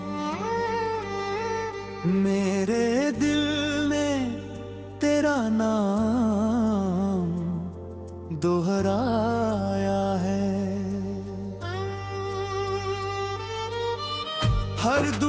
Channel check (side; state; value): both; identical; correlation 1.00